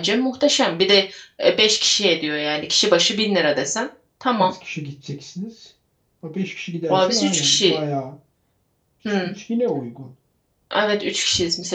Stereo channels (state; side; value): identical; both; correlation 1.00